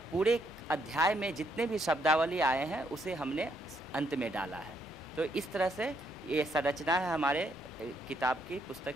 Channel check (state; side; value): normal; both; correlation 0.74